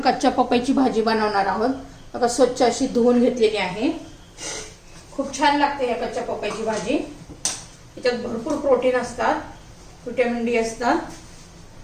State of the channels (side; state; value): both; identical; correlation 1.00